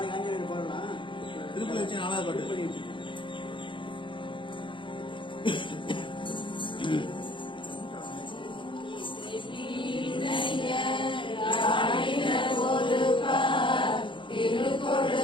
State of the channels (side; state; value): right; late; 0.24 ms